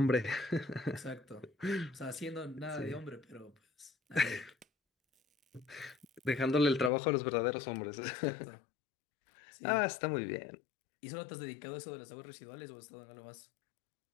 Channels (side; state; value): right; drops out; at 6.9 s